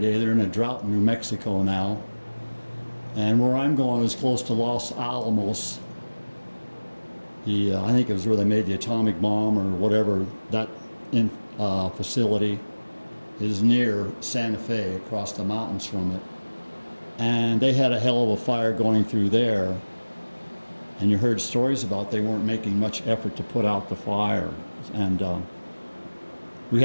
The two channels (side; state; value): both; inverted; correlation -1.00